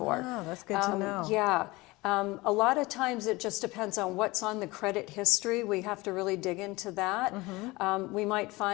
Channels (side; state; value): right; quieter; 21.9 dB